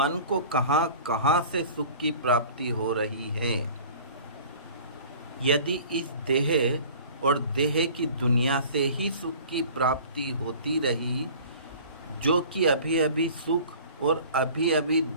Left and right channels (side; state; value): both; inverted; correlation -0.44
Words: को कहाँ कहाँ से सुख की प्राप्ति हो रही है। यदि इस देह और देह की दुनिया से ही सुख की प्राप्ति होती रही, जो कि अभी अभी सुख और अभी अभी